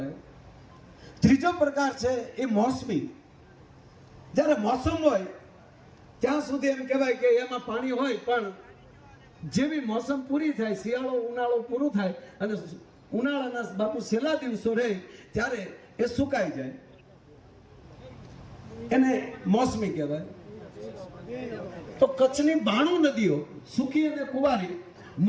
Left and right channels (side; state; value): both; identical; correlation 1.00